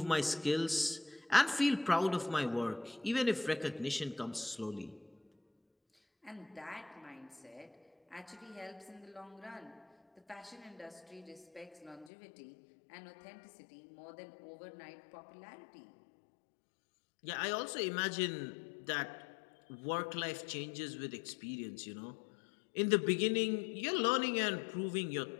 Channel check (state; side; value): drops out; right; at 12.1 s